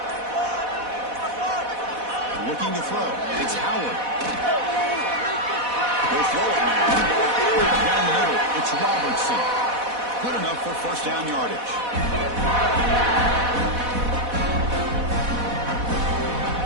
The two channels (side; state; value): left; late; 4.1 ms